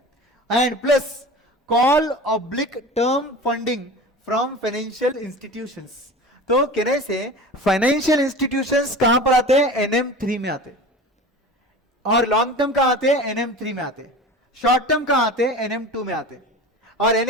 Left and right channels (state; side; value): normal; both; correlation 0.35